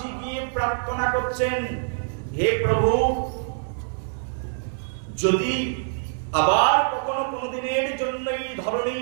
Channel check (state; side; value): silent; left; digital silence